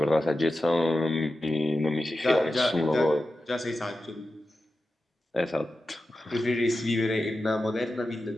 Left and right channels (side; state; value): both; normal; correlation 0.92